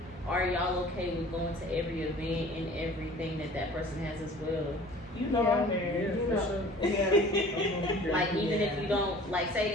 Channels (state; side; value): normal; both; correlation 0.47